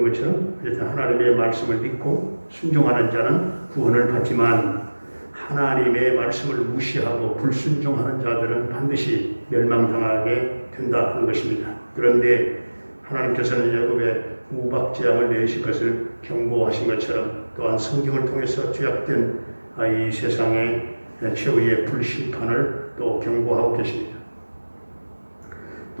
것처럼 하나님의 말씀을 믿고 순종하는 자는 구원을 받지만 하나님의 말씀을 무시하고 불순종하는 자들은 반드시 멸망당하게 된다 하는 것입니다. 그런데 하나님께서는 애굽의 우박 재앙을 내리실 것을 경고하신 것처럼 또한 성경을 통해서 죄악된 이 세상의 최후의 불심판을 또 경고하고 계십니다.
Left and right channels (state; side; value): inverted; both; correlation -1.00